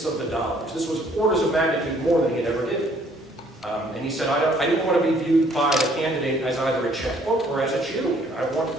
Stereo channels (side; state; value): both; normal; correlation 0.62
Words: of the dollars. This was orders of magnitude more than he had ever did. And he said, I didn't want to be viewed by the candidate as either a checkbook or as a cheerleader. I want